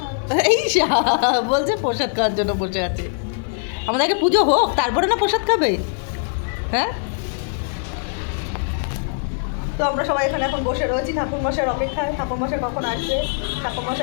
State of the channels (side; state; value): right; silent; 65 dB below the other